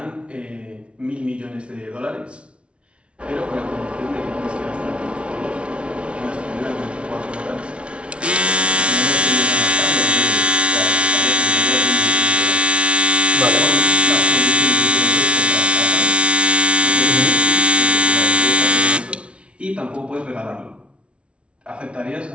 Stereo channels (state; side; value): late; left; 0.060 ms